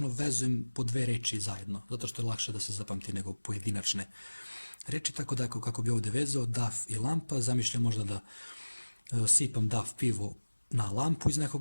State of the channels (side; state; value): both; inverted; correlation -1.00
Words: vezujem po dve reči zajedno, zato što je lakše da se zapamti nego pojedinačne reči, tako da kako bi ovdje vezao DAF i lampa, zamišljam možda da sipam DAF pivo na lampu iz